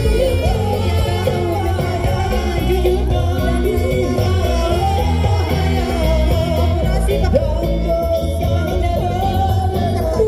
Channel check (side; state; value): both; identical; correlation 1.00